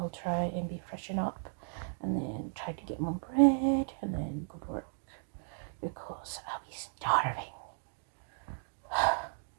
try and be freshen up, and then try to get my bread, and then go to work, because I'll be starving.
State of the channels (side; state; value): left; silent; digital silence